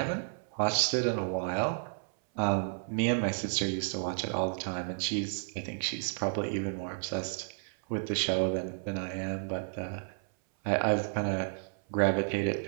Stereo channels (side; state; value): left; silent; 57 dB below the other